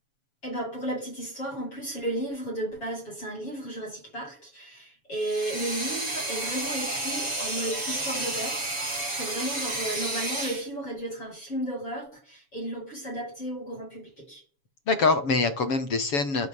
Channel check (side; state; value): right; late; 7.2 ms